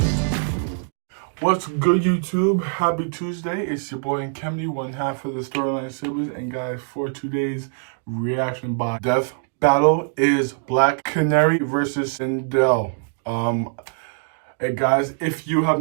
What's good, YouTube? Happy Tuesday. It's your boy Kemny, one half of the Storyline Siblings. And guys, for today's reaction by Death Battle is Black Canary versus Sindel. Hey guys, if you have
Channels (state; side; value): silent; left; 59 dB below the other